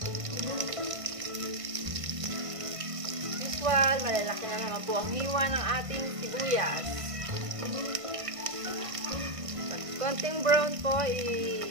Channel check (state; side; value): late; left; 1.5 ms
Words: Usual, malalaki na naman po ang hiwa ng ating sibuyas. Pag konting brown po,